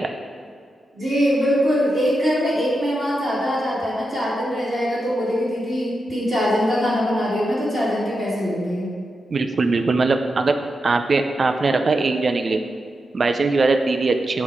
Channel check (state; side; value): normal; both; correlation 0.88